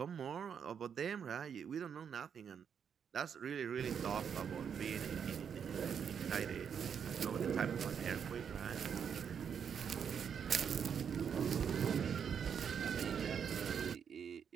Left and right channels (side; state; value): left; quieter; 7.5 dB